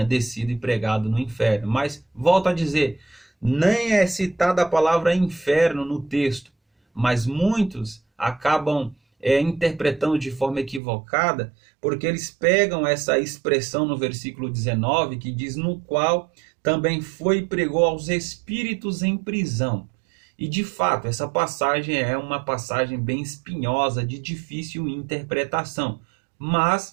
descido e pregado no inferno. Mas, volto a dizer, nem é citada a palavra inferno no texto, mas muitos acabam interpretando de forma equivocada, porque eles pegam essa expressão no versículo 19, que diz: no qual também foi e pregou aos espíritos em prisão. E de fato, essa passagem é uma passagem bem espinhosa, de difícil interpretação.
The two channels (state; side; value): drops out; left; at 10.8 s